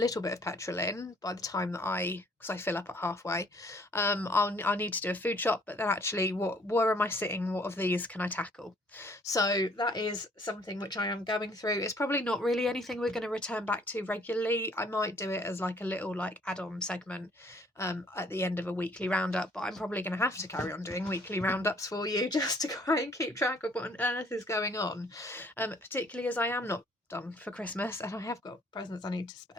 bit of petrol in by the time that because I fill up at halfway. I'll need to do a food shop, but then actually, where am I sitting? What of these can I tackle? So that is something which I am going through. It's probably not really anything we're going to return back to regularly. I might do it as like a little like add-on segment at the end of a weekly roundup, but I'm probably going to have to carry on doing weekly roundups for you just to try and keep track of what on earth is going on, particularly as I am not done for Christmas and I have got presents I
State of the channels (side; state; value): both; normal; correlation 0.61